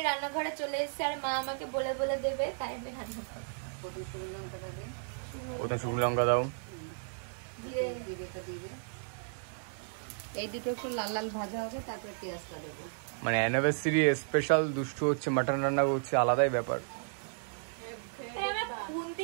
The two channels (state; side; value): silent; left; 55 dB below the other